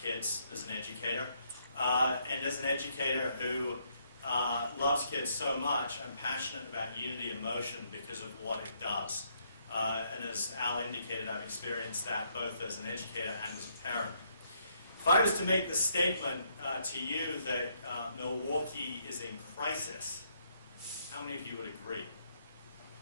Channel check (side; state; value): both; inverted; correlation -0.72